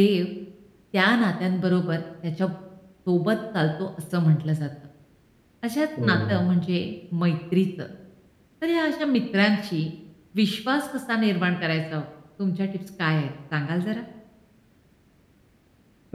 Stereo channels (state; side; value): identical; both; correlation 1.00